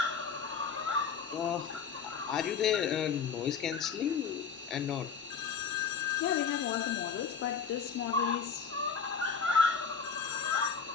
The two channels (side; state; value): right; quieter; 6.1 dB